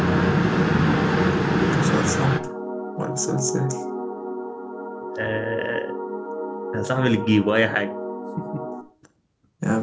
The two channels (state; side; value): identical; both; correlation 1.00